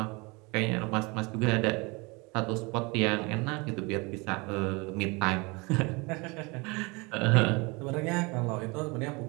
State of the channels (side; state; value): left; quieter; 27.0 dB